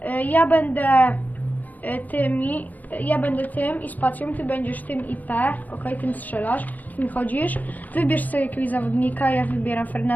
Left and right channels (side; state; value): right; late; 0.081 ms